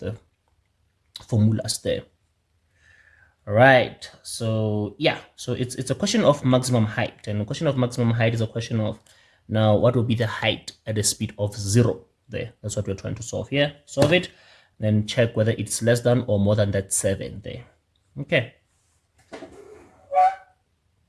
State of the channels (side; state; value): both; identical; correlation 1.00